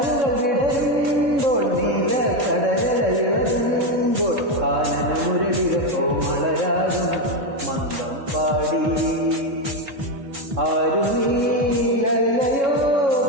വിടരുമ്പോൾ നീല കടലല ഇളകുമ്പോൾ, കാനന മുരളിക കോമളരാഗം മന്ദം പാടി. ആരു നീലയോ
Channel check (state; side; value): late; left; 3.6 ms